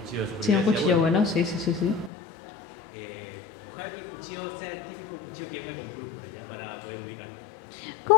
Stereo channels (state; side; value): drops out; right; at 2.1 s